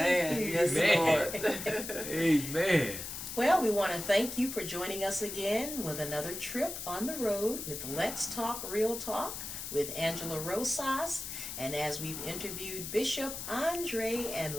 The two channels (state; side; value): noise; left; hiss, 7 dB below the sound